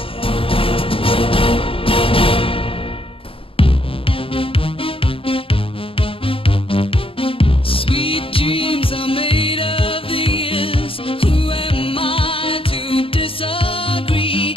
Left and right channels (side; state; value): right; late; 0.26 ms